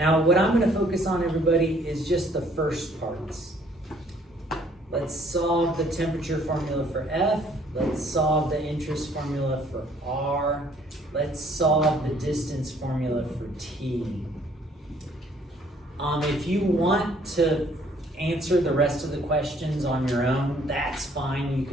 what I'm going to focus on, everybody, is just the first parts. Let's solve the temperature formula for F. Let's solve the interest formula for R. Let's solve the distance formula for T. If you want to answer the rest of the questions on your own, that's fine, you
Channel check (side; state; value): both; normal; correlation 0.61